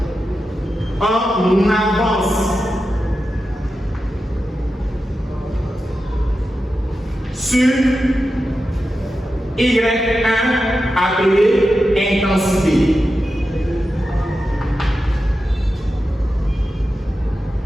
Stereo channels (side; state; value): both; normal; correlation 0.91